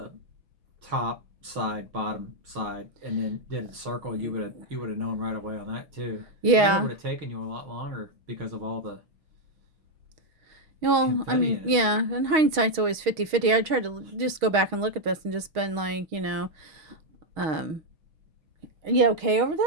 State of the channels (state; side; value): late; left; 6.3 ms